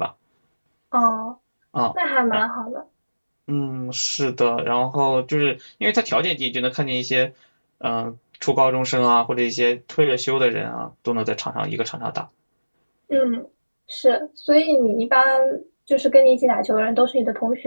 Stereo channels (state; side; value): inverted; both; correlation -1.00